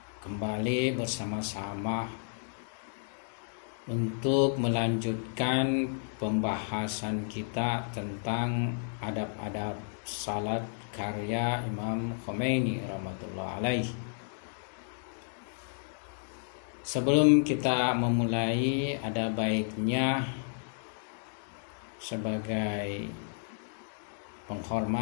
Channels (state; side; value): silent; right; digital silence